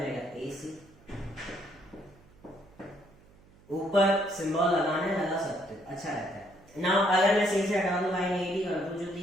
ए सी। ऊपर सिंबल लगाने लगा सकते हो, अच्छा रहता है। नाउ अगर मैं सी से हटा दूं, लाइन ए डी कर दूं जो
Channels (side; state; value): right; noise; hum, 27 dB below the sound